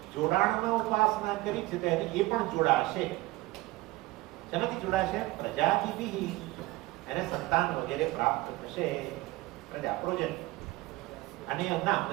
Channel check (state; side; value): quieter; left; 19.9 dB